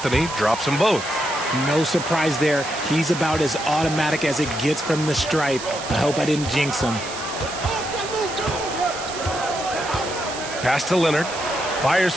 drops them both. No surprise there. He's about as automatic as it gets from the stripe. I hope I didn't jinx him. Pass to Leonard. Fires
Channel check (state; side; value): noise; right; hiss, 10 dB below the sound